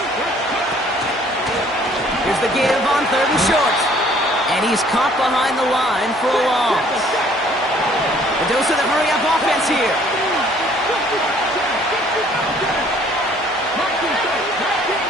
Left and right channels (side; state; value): both; normal; correlation 0.58